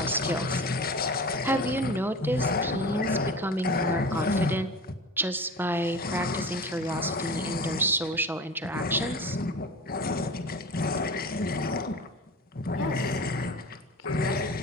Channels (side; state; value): both; normal; correlation 0.34